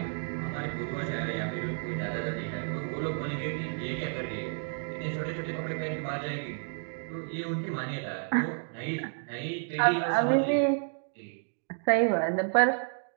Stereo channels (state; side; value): silent; left; 57 dB below the other